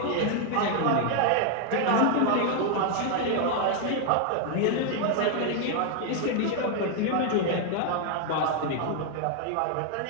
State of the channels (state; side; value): different; both; correlation 0.00